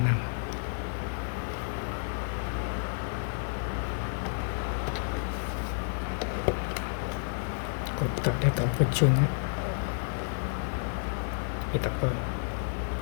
Kotak dia tak opportune . Tak apa.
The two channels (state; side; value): silent; right; 57 dB below the other